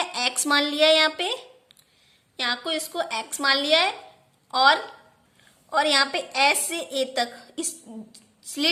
एक्स मान लिया है। यहाँ को इसको एक्स मान लिया है, और यहाँ पे एस से ए तक, इस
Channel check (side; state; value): both; identical; correlation 1.00